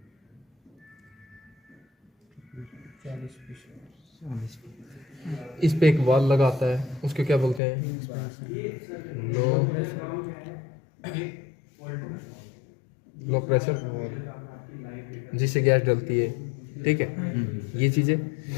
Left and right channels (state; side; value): drops out; right; at 7.6 s